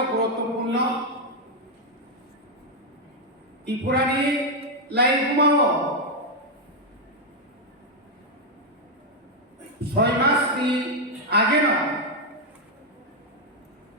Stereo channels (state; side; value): normal; both; correlation 0.01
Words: গুরুত্বপূর্ণ ত্রিপুরানি লাইভ ঘুমাও 6 মাস আগে না